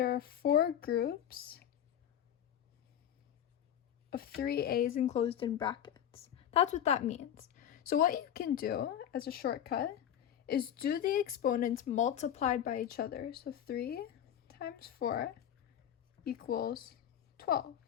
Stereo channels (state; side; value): quieter; right; 10.1 dB